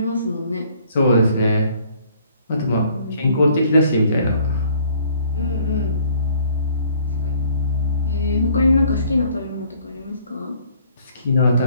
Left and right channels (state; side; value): inverted; both; correlation -0.59